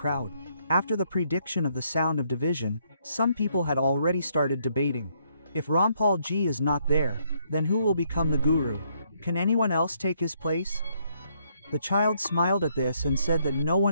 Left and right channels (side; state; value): both; inverted; correlation -0.71